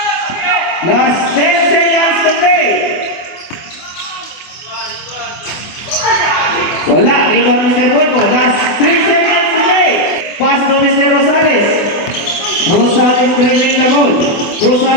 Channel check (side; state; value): right; late; 24 ms